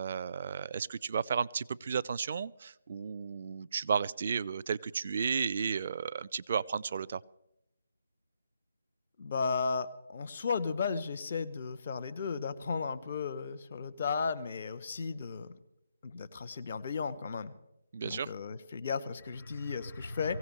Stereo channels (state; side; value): inverted; both; correlation -0.74